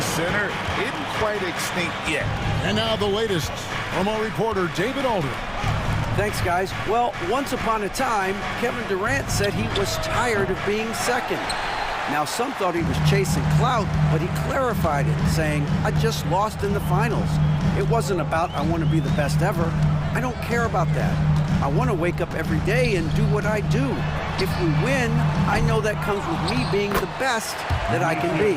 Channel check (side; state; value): both; identical; correlation 1.00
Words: center isn't quite extinct yet. And now the latest from our reporter, David Alder. Thanks, guys. Well, once upon a time, Kevin Durant said he was tired of being second. Now, some thought he was chasing clout, but he clarified it, saying, I just lost in the finals. It wasn't about, I want to be the best ever. I don't care about that. I want to wake up every day and do what I do. If we win, I know that comes with me being the best that I can be.